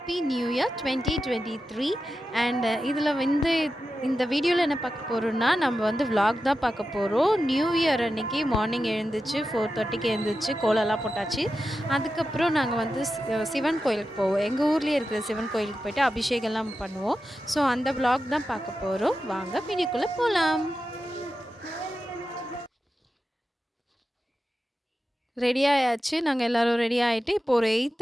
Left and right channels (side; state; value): both; normal; correlation 0.91